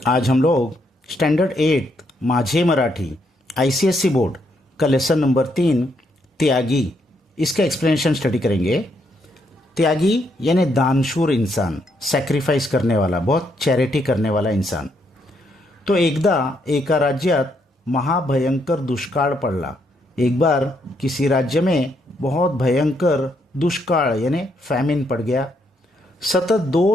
आज हम लोग standard 8 माझे मराठी आईसीएससी बोर्ड का लेसन नंबर 3 त्यागी इसका एक्सप्लेनेशन स्टडी करेंगे। त्यागी यानी दानशूर इंसान, सैक्रिफाइस करने वाला, बहुत चैरिटी करने वाला इंसान। तो एकदा एका राज्यात महाभयंकर दुष्काळ पडला। एक बार किसी राज्य में बहुत भयंकर दुष्काळ यानी फैमिन पड़ गया। सतत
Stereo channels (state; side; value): normal; both; correlation 0.75